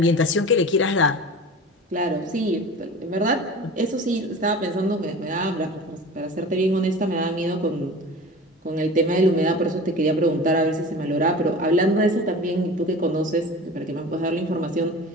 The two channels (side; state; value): both; normal; correlation 0.36